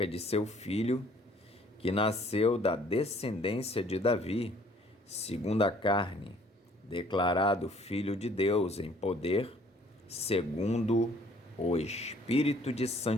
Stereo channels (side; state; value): both; normal; correlation 0.58